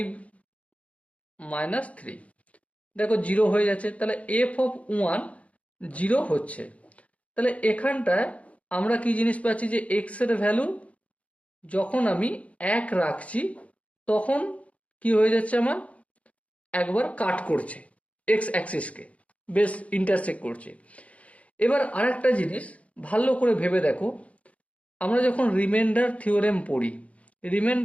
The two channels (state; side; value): late; right; 0.065 ms